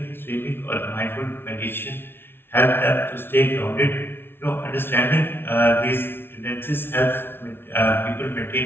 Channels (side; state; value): right; late; 0.11 ms